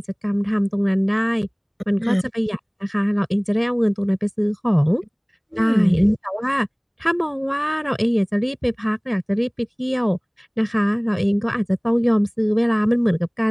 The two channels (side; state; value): both; identical; correlation 1.00